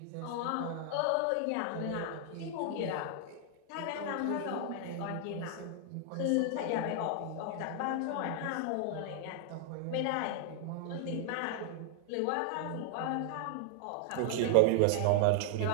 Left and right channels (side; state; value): both; different; correlation 0.00